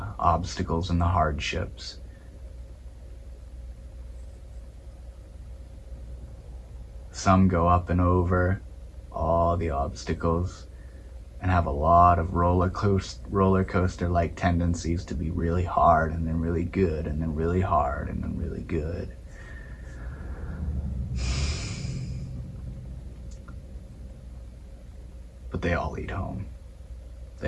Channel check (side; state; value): both; identical; correlation 1.00